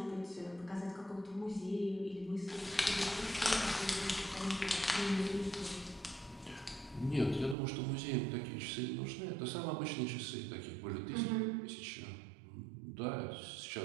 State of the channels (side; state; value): left; drops out; at 7.6 s